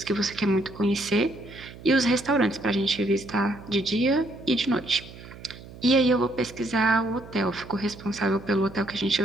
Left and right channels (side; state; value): right; noise; hum, 17 dB below the sound